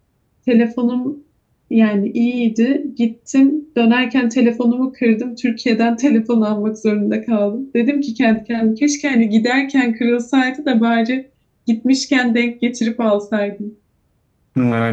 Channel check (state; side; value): identical; both; correlation 1.00